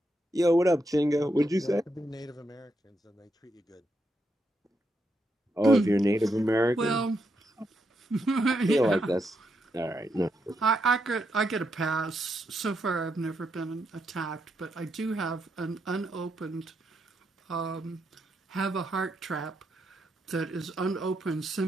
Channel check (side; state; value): both; normal; correlation 0.81